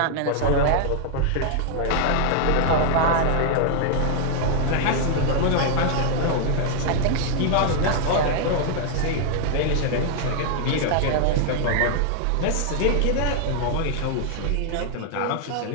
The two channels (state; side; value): different; both; correlation 0.00